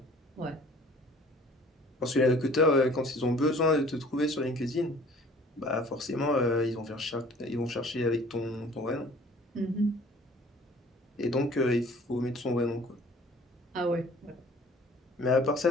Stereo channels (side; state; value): both; normal; correlation 0.51